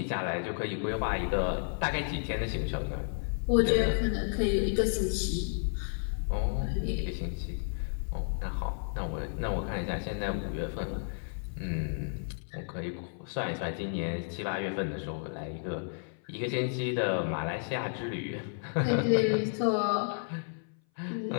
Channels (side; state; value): right; silent; 56 dB below the other